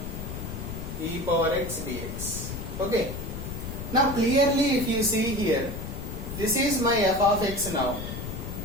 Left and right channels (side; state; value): left; noise; rumble, 7 dB below the sound